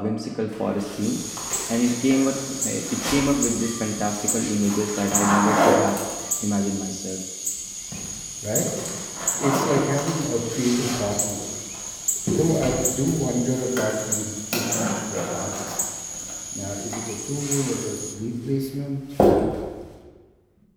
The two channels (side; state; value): both; identical; correlation 1.00